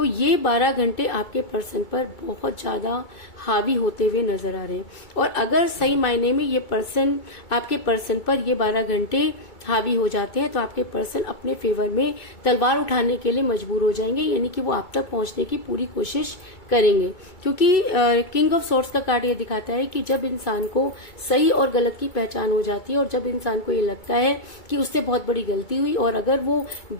ये 12 घंटे आपके पर्सन पर बहुत ज्यादा हावी होते हुए नजर आ रहे हैं। और अगर सही मायने में ये पर्सन आपके पर्सन पर ये 12 घंटे हावी हो जाते हैं तो आपके पर्सन अपने फेवर में तलवार उठाने के लिए मजबूर हो जाएंगे। यानी कि वो आप तक पहुंचने की पूरी कोशिश करेंगे, क्योंकि किंग ऑफ सॉर्ड्स का कार्ड ये दिखाता है कि जब इंसान को सही और गलत की पहचान हो जाती है, और जब इंसान को ये लगता है कि उससे बहुत बड़ी गलती हुई, और अगर वो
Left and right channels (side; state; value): right; late; 2.3 ms